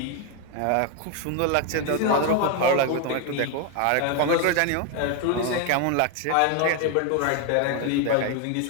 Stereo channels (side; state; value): both; different; correlation 0.01